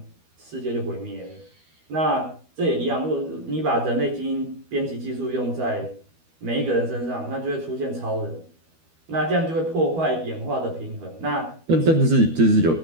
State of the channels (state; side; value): late; left; 12 ms